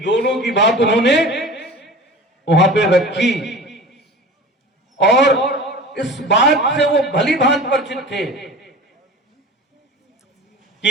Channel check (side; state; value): both; normal; correlation 0.37